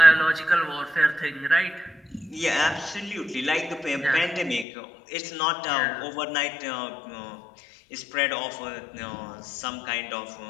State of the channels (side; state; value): right; drops out; at 4.7 s